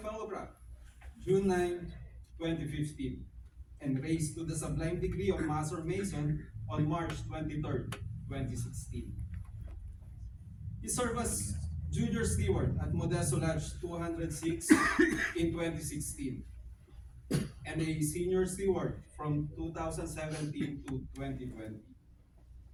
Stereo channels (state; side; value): identical; both; correlation 1.00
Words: Fellowcraft June 9, 2015, and raised to the sublime degree of Master Mason on March 23, 2016. He served as Junior Steward at Modesto Lodge 206 in 2016, and a Senior Steward from 2017 to 2020.